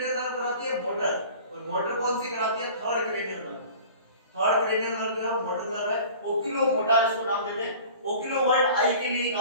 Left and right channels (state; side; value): inverted; both; correlation -0.43